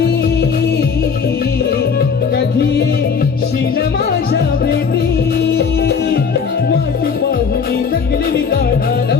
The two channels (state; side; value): quieter; right; 5.9 dB